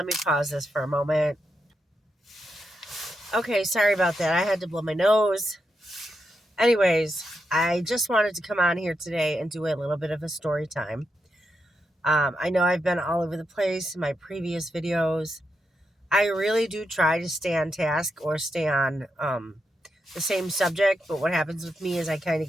me pause this for a moment. Okay, sorry about that. I had to blow my nose. Anyways, I just wanted to come on here today and do a little bit of a story time. I know I've been all over the place in my previous videos. I really do try to stay on task or stay on the same subject, but what happens with me is I kind of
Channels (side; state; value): both; normal; correlation 0.85